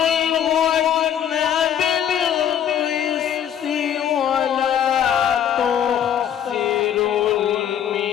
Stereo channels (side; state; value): right; quieter; 9.6 dB